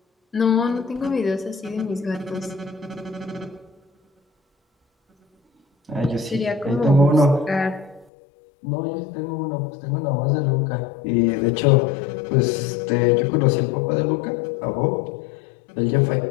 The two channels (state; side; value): drops out; right; at 8.1 s